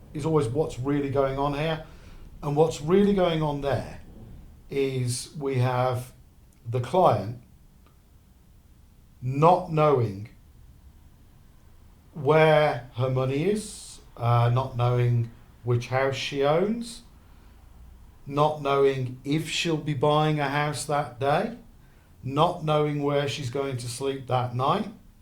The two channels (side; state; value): both; identical; correlation 1.00